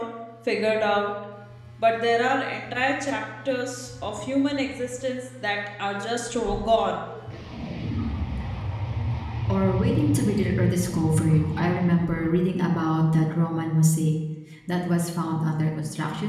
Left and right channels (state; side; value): identical; both; correlation 1.00